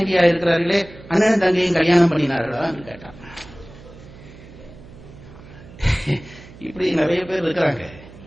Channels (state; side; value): noise; right; hum, 19 dB below the sound